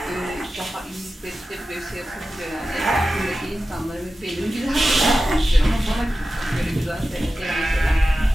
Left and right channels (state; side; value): normal; both; correlation 0.93